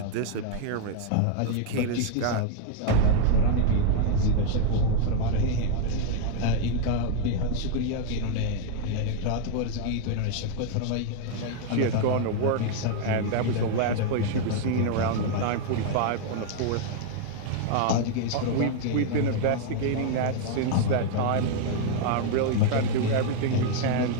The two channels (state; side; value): different; both; correlation 0.00